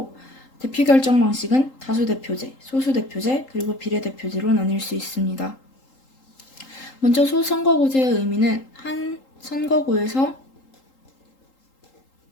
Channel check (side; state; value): right; late; 3.8 ms